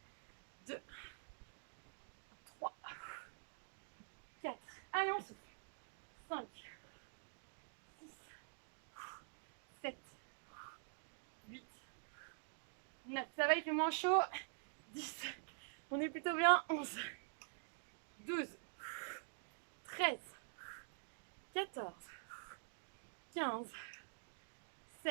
2, 3, 4. Allez, on souffle. 5, 6, 7, 8, 9. Ça va, il fait moins chaud. 10. On est plutôt bien. 11, 12, 13, 14, 15,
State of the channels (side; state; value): left; silent; digital silence